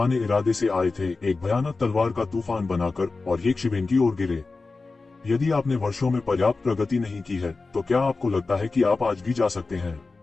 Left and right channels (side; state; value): right; quieter; 3.8 dB